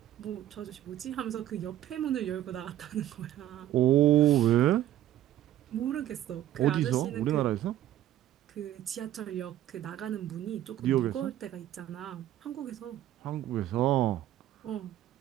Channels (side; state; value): left; quieter; 12.7 dB